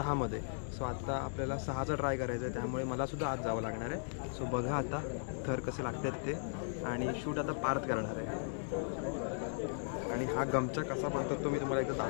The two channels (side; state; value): right; silent; digital silence